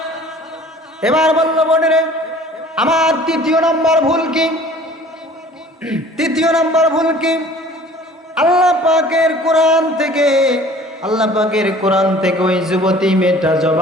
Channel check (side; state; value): both; normal; correlation 0.49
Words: এবার বলল, বোনেরে, আমার 3য় নাম্বার ভুল কি? 3য় নাম্বার ভুল কি? আল্লাহ পাকের কোরআন থেকে ওই যুবতী মেয়েটা